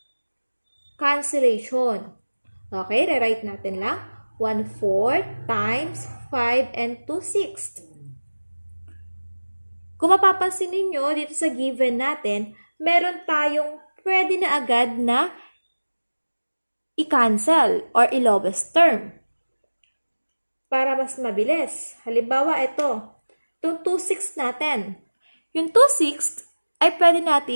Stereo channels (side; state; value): both; inverted; correlation -1.00